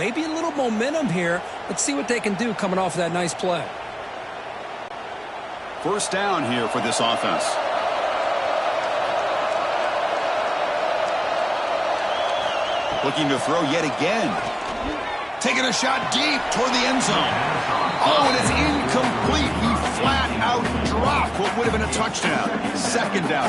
a little momentum here. Let's see what they can do coming off of that nice play. First down here for this offense. Looking to throw yet again. Taking a shot deep toward the end zone. Oh, and it's incomplete. He flat-out drop. What would have been a touchdown. Second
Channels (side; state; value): both; identical; correlation 1.00